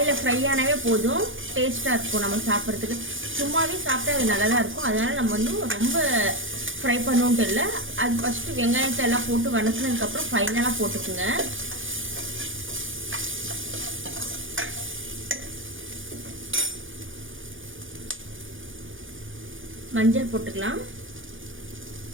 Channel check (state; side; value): late; left; 0.57 ms